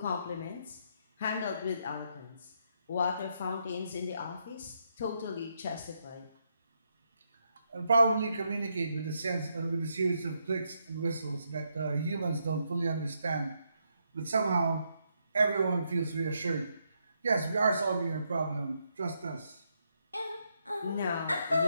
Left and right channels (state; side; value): inverted; both; correlation -0.79